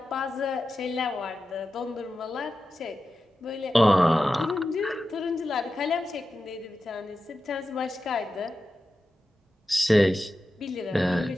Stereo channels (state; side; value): normal; both; correlation 0.92